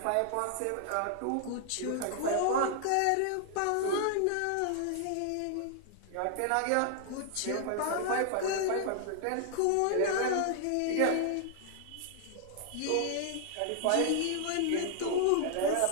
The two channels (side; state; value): both; different; correlation 0.00